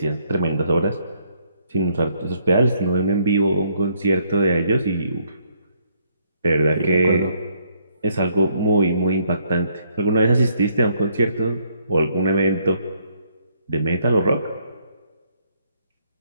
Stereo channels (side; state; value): both; inverted; correlation -0.70